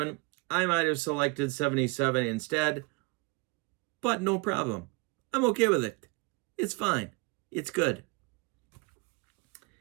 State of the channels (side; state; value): left; quieter; 28.0 dB